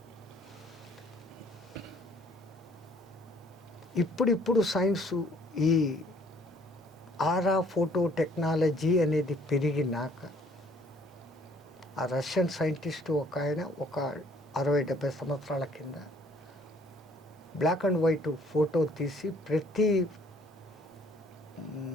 ఇప్పుడిప్పుడు సైన్సు ఈ ఆరా ఫోటో టెక్నాలజీ అనేది పెరిగినాక ఆ రష్యన్ సైంటిస్ట్ ఒక ఆయన ఒక 60-70 సంవత్సరాల కింద బ్లాక్ అండ్ వైట్ ఫోటో తీసి ప్రతి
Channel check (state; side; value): normal; both; correlation 0.59